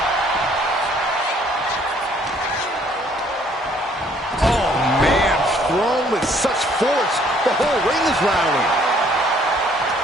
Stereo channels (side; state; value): both; normal; correlation 0.62